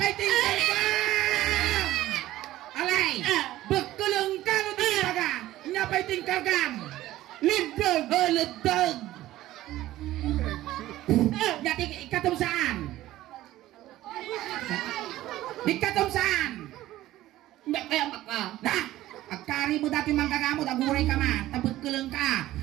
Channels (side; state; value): left; quieter; 15.2 dB